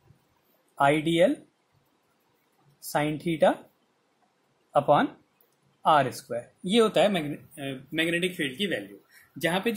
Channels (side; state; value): both; identical; correlation 1.00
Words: I D L sine theta upon R square. ये होता है मैग्नेटिक फील्ड की वैल्यू। जहां पे